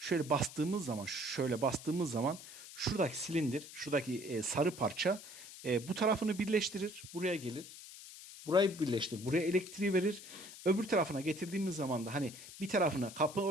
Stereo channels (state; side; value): noise; left; hiss, 15 dB below the sound